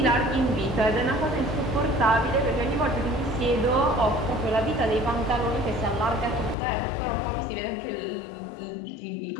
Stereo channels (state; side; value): drops out; right; at 6.6 s